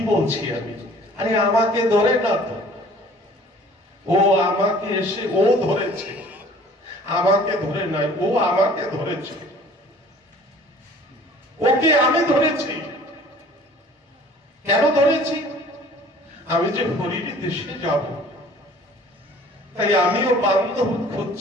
বলছি আমি? আরে আমাকে ধরে না তো, ও আমাকে এসে ও ধরেছে, আমাকে ধরে নয়, ও আমাকে ধরেছে। ওকে আমি ধরেছি। কেন ধরেছি? আমি যে হরির দেশে যাব, তাই আমিও বান্ধব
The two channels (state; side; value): normal; both; correlation 0.50